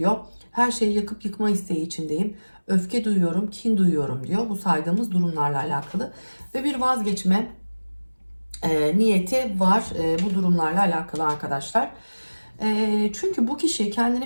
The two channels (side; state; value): both; inverted; correlation -1.00